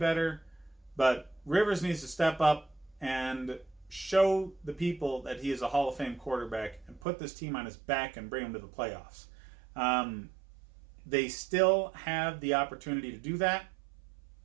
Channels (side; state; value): left; drops out; at 7.1 s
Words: but Rivers needs to step up and show the people that he is a Hall of Fame quarterback and put this team on his back and bring them to the playoffs. They still have the opportunity to do that,